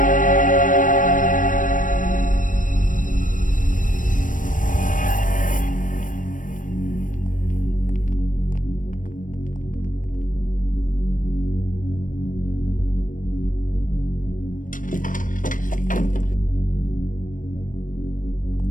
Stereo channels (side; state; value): right; late; 0.38 ms